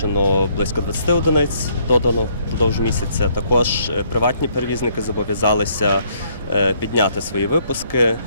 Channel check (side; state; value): both; inverted; correlation -0.67